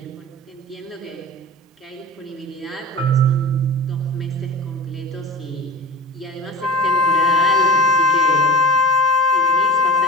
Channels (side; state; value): both; normal; correlation 0.32